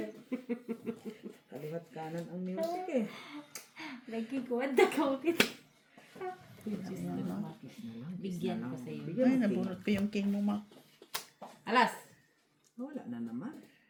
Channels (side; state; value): both; identical; correlation 1.00